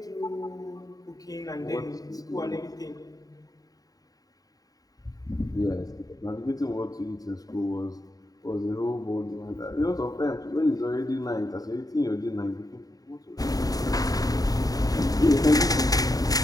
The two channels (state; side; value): late; right; 0.18 ms